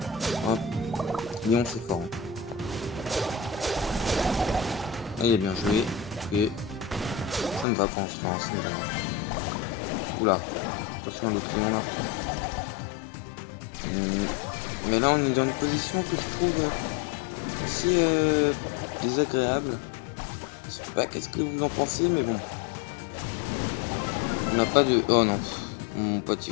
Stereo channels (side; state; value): right; drops out; at 7.7 s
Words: Hop, Lyon c'est fort. Ah, il a bien joué. Ok, ça ne va pas en France. Oula, attention le point. Mais là on est dans une position que je trouve assez désagréable. Je sais pas qu'est-ce que vous en pensez, mais bon. On n'a pas de... Oh non, mon pote